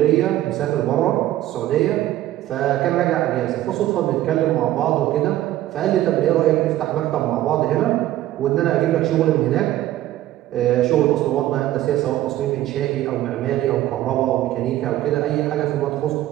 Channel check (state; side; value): quieter; left; 14.2 dB